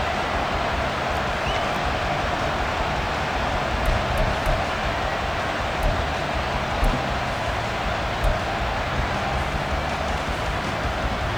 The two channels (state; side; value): noise; right; hiss, 29 dB below the sound